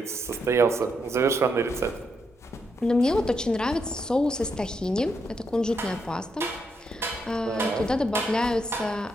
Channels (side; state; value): both; normal; correlation 0.79